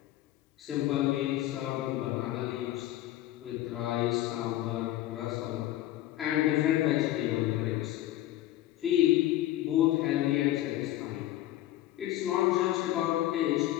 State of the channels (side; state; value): right; quieter; 14.4 dB